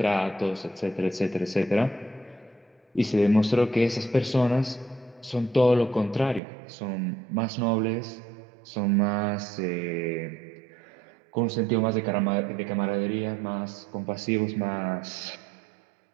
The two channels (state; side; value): drops out; left; at 6.4 s